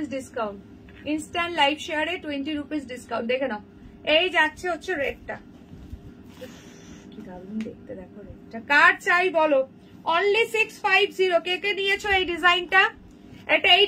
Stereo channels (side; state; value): both; identical; correlation 1.00